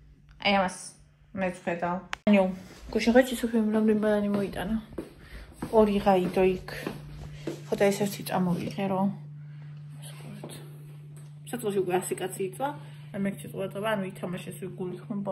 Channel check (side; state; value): both; identical; correlation 1.00